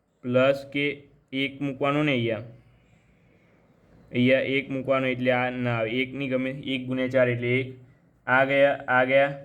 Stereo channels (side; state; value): both; identical; correlation 1.00